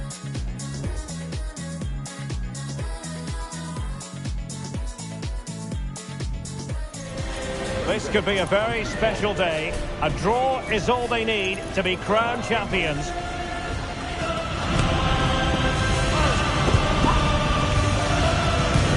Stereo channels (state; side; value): identical; both; correlation 1.00